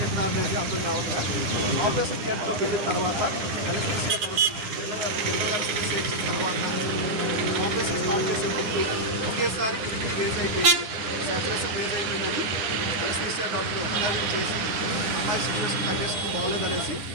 ఎక్కడ అనేది అర్థం కావట్లేదు. ఆపరేషన్ థియేటర్లోకి వెళ్ళిన తర్వాత ఎలక్ట్రిసిటీ తర్వాత ఆపరేషన్ స్టార్ట్ చేసే ముందు ఒకేసారి రేజ్ అయిపోయింది, సాచురేషన్ రేజ్ అయిపోయిందని ఎలక్ట్రిసిటీ డాక్టర్ అనాలిసిస్ చేసి అమ్మాయి సిచ్యువేషన్ కండిషన్ బాగోలేదనేసి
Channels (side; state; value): left; late; 9.5 ms